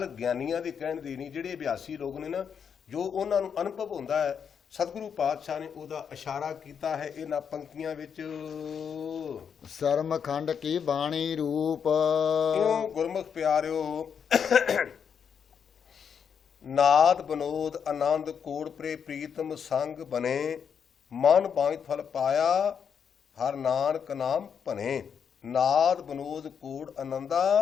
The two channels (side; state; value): right; quieter; 7.2 dB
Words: ਗਿਆਨੀਆਂ ਦੇ ਕਹਿਣ ਦੀ ਨਹੀਂ, ਜਿਹੜੇ ਅਭਿਆਸੀ ਲੋਕ ਨੇ ਨਾ, ਜੋ ਉਹਨਾਂ ਨੂੰ ਅਨੁਭਵ ਹੁੰਦਾ ਹੈ, ਸਤਿਗੁਰੂ ਪਾਤਸ਼ਾਹ ਨੇ ਉਹਦਾ ਇਸ਼ਾਰਾ ਕੀਤਾ ਹੈ ਇਹਨਾਂ ਪੰਕਤੀਆਂ ਵਿੱਚ। ਸਰਮ ਖੰਡ ਕੀ ਬਾਣੀ ਰੂਪ। ਇਉਂ ਗੁਰਮੁਖ ਪਿਆਰਿਓ ਨਾਦ ਬਨੋਦ ਆਨੰਦ ਕੋੜ ਪ੍ਰੇ ਪ੍ਰੀਤਮ ਸੰਗ ਬਨੇ, ਮਨ ਬਾਂਝ ਫਲ ਪਾਇਆ ਹਰ ਨਾਨਕ ਨਾਮ ਭਨੇ। ਨਾਦ ਬਨੋਦ ਕੋੜ ਆਨੰਦਾ